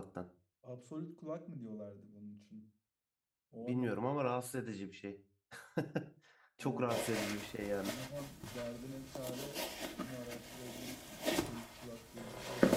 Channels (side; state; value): both; identical; correlation 1.00